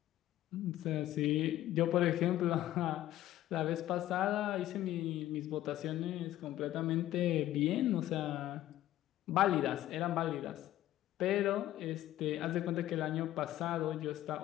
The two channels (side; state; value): right; quieter; 13.8 dB